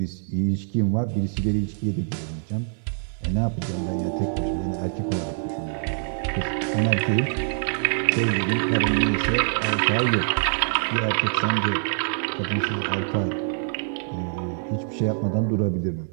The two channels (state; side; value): silent; left; digital silence